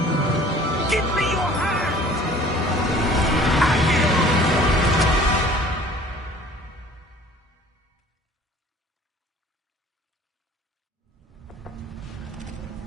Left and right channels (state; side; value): normal; both; correlation 0.50